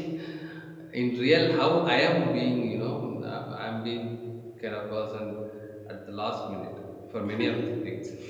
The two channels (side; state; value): both; identical; correlation 1.00